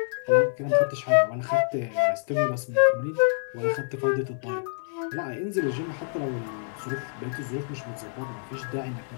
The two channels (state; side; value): silent; right; digital silence